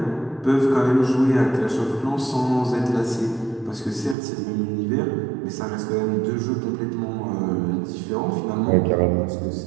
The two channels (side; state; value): left; drops out; at 4.2 s